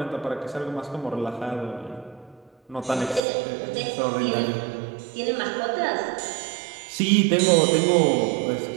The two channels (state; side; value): drops out; left; at 3.2 s